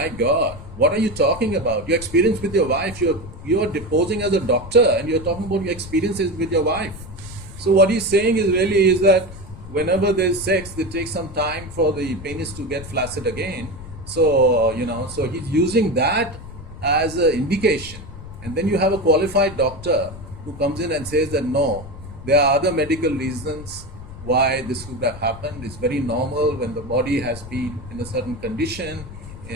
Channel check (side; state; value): left; noise; rumble, 14 dB below the sound